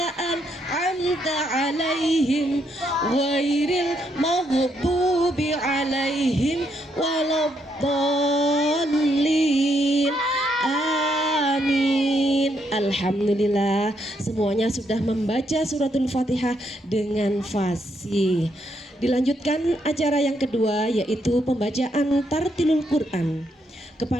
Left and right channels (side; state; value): both; normal; correlation 0.76